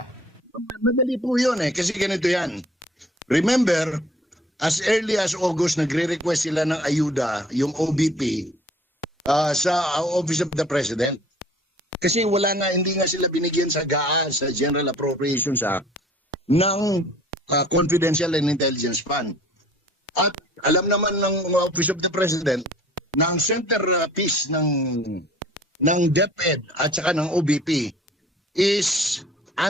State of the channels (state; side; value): normal; both; correlation 0.51